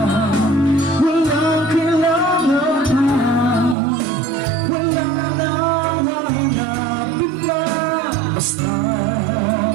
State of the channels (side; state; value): left; drops out; at 3.8 s